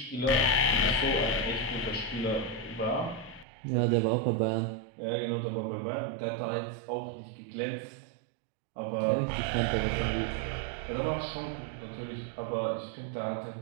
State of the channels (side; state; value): left; drops out; at 3.5 s